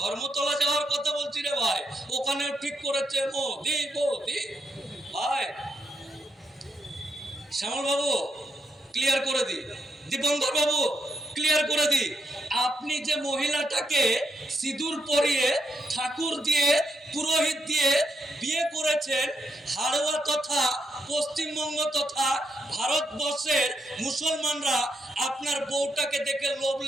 যাওয়ার কথা বলছি রে ভাই, ওখানেও ঠিক করেছে মোদি মোদি। ভাই শ্যামল বাবু ক্লিয়ার করে দি, দীপঙ্কর বাবু ক্লিয়ার করে দি, আপনি যে মহিলাটাকে সিঁদুর পরিয়ে ঠাকুর দিয়ে পুরোহিত দিয়ে বিয়ে করেছেন, হাড়োয়া তথা পশ্চিমবঙ্গ তথা ভারতবর্ষের মুসলমানরা আপনার বউটাকে দেখে লোভ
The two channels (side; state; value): both; normal; correlation 0.78